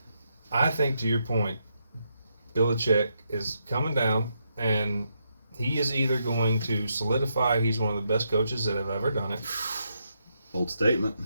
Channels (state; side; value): inverted; both; correlation -0.80